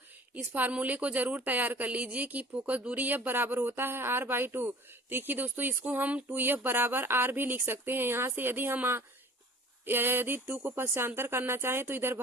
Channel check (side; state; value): both; normal; correlation 0.46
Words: इस फार्मूले को जरूर तैयार कर लीजिए कि फोकस दूरी एफ बराबर होता है r/2। देखिए दोस्तों, इसको हम 2f बराबर r भी लिख सकते हैं। यहाँ से यदि 2 को पक्षांतर करना चाहे तो इधर